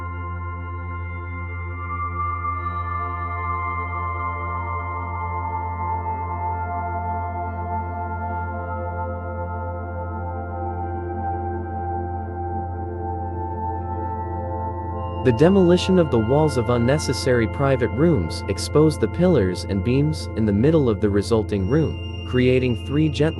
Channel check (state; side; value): identical; both; correlation 1.00